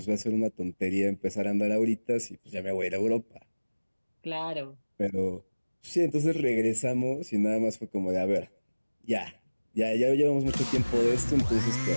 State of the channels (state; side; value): inverted; both; correlation -1.00